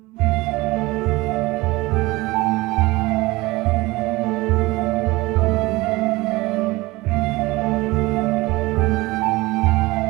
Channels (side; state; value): left; quieter; 21.1 dB